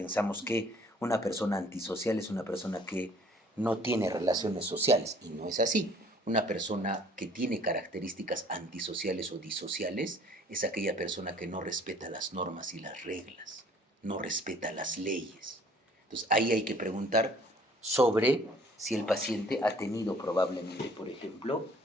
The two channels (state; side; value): normal; both; correlation 0.56